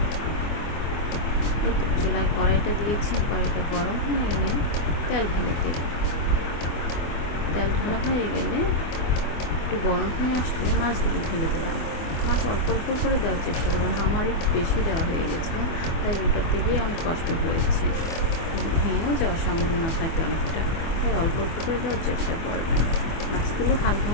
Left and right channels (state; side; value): late; right; 24 ms